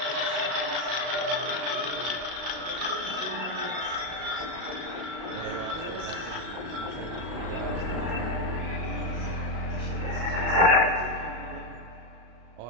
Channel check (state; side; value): late; left; 35 ms